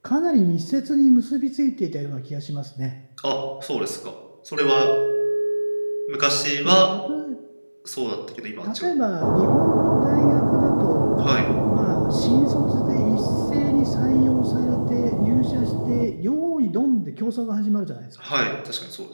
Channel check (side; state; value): both; inverted; correlation -1.00